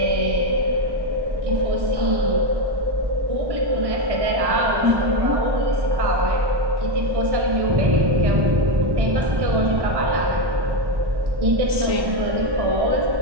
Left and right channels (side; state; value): left; late; 1.1 ms